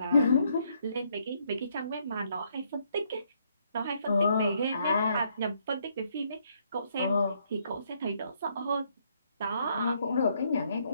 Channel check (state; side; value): inverted; both; correlation -0.71